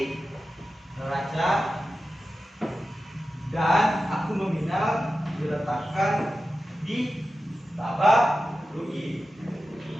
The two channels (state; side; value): normal; both; correlation 0.93